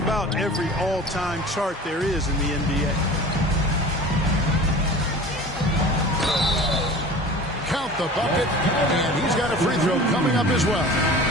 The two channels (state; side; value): normal; both; correlation 0.39